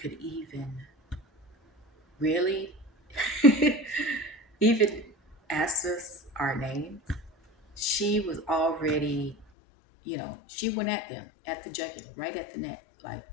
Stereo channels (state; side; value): drops out; right; at 9.5 s